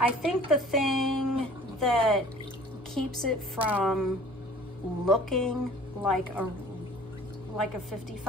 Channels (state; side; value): normal; both; correlation 0.49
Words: think the thing that keeps it from looking like a